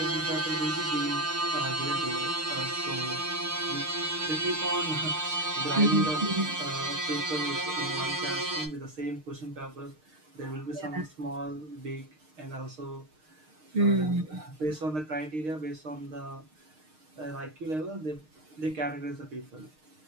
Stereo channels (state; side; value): late; left; 6.5 ms